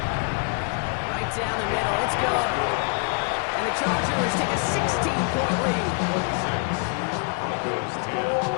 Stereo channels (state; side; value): quieter; right; 35.9 dB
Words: Right down the middle, it's good. And the Chargers take a 16-point lead. 26, Broncos 10.